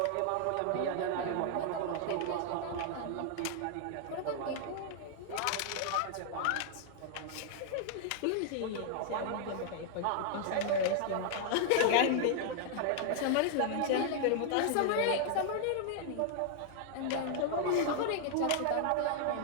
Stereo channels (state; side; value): different; both; correlation -0.01